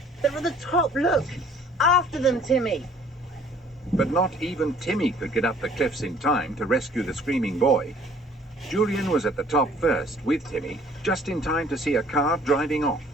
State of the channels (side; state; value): both; normal; correlation 0.56